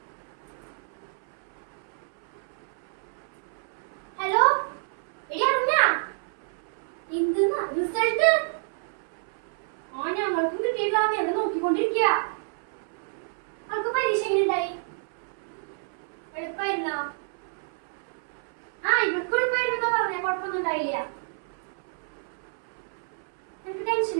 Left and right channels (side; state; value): left; silent; 59 dB below the other